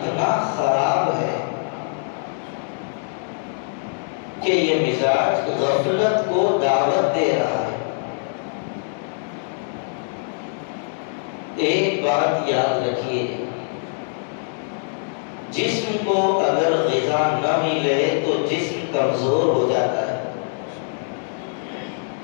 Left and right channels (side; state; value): right; silent; digital silence